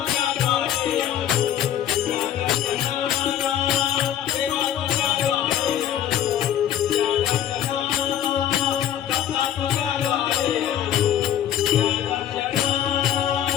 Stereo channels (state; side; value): quieter; right; 10.7 dB